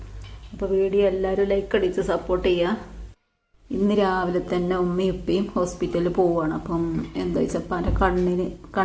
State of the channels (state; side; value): identical; both; correlation 1.00